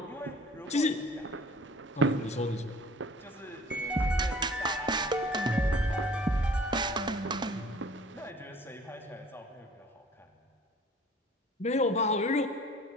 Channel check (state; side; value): normal; both; correlation 0.50